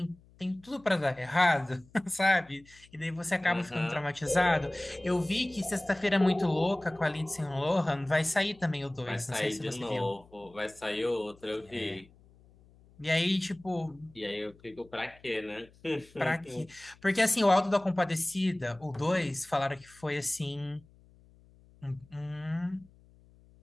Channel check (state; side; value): noise; left; hum, 27 dB below the sound